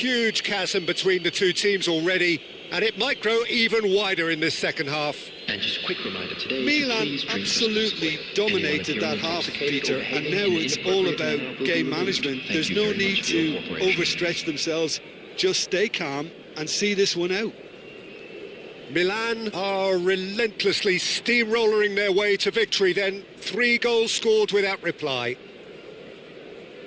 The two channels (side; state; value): both; identical; correlation 1.00